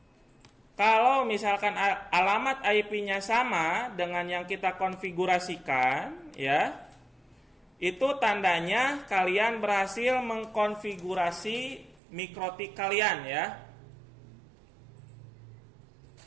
Kalau misalkan alamat IP-nya sama dengan yang kita konfigurasikan, ya, itu tandanya kalian berhasil mengkonfigurasi mikrotik kalian, ya.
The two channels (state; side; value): drops out; left; at 12.0 s